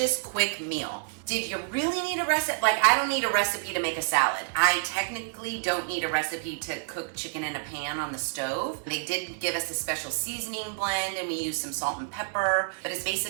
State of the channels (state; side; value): silent; left; digital silence